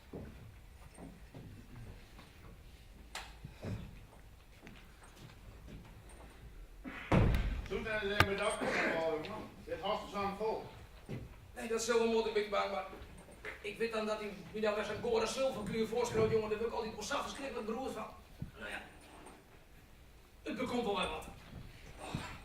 Toen zijn ze met dat man. Dit hast is aan vol. Nee, dat is zo moet ik bang, maar ik weet dan dat hij nu daar weer zijn gore zilverkleur voorschroot, jongen, daar wil ik altijd wel verschrikkelijk beroerd van. Nou ja, het bekomt wel wat.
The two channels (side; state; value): both; identical; correlation 1.00